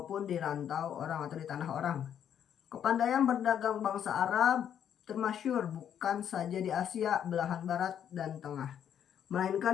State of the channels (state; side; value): quieter; right; 9.2 dB